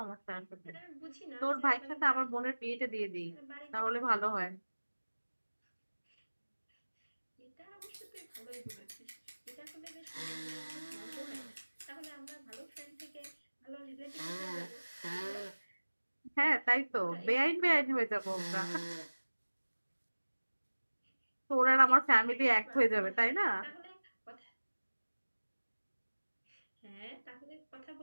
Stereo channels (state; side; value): inverted; both; correlation -1.00